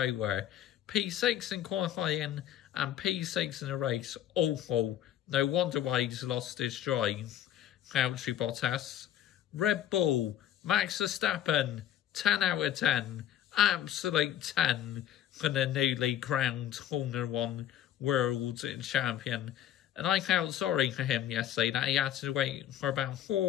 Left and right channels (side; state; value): right; quieter; 11.3 dB